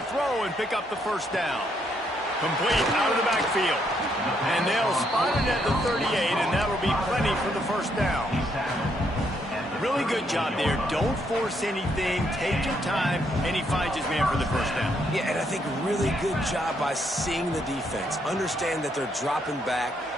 throw and pick up the first down. Complete out of the backfield. And they'll spot it at the 38, and that'll be plenty for the first down. Really good job there. Don't force anything. Take your time, and he finds his man for the first down. Yeah, and I think really good job by seeing the defense. Understand that they're dropping back.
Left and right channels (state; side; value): normal; both; correlation 0.74